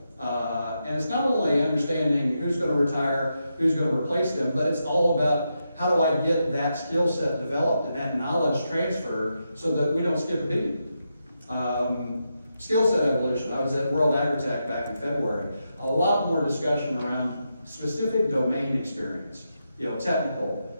And it's not only understanding who's going to retire, who's going to replace them, but it's all about how do I get that skill set developed and that knowledge transferred so that we don't skip a beat. Skill set evolution. I was at World Agritech back in February. A lot more discussion around specific domain experience, technical,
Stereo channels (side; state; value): both; inverted; correlation -0.85